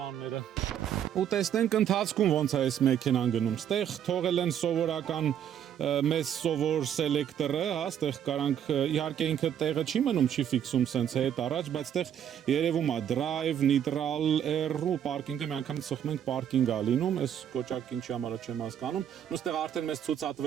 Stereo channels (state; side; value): quieter; left; 9.5 dB